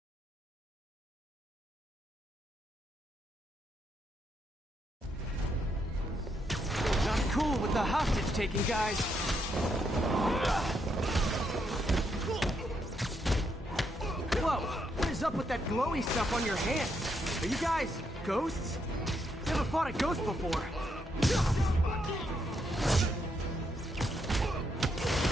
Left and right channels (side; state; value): both; normal; correlation 0.78